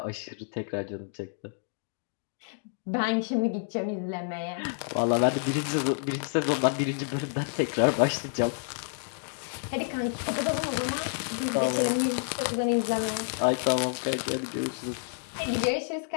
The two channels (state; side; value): silent; right; digital silence